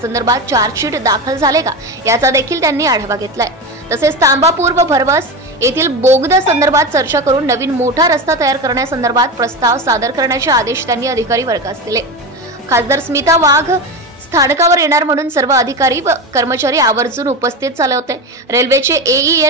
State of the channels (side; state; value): both; normal; correlation 0.21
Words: चार्जशीट दाखल झाले का याचा देखील त्यांनी आढावा घेतलाय. तसेच तांबापूर व भरवस येथील बोगदा संदर्भात चर्चा करून नवीन मोठा रस्ता तयार करण्यासंदर्भात प्रस्ताव सादर करण्याचे आदेश त्यांनी अधिकारी वर्गास दिले. खासदार स्मिता वाघ स्थानकावर येणार म्हणून सर्व अधिकारी व कर्मचारी आवर्जून उपस्थित झाले होते. रेल्वेचे